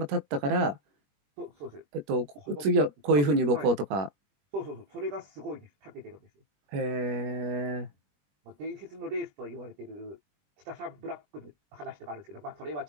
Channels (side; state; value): left; late; 20 ms